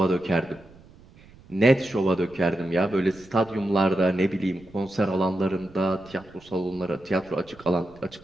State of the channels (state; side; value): noise; right; rumble, 24 dB below the sound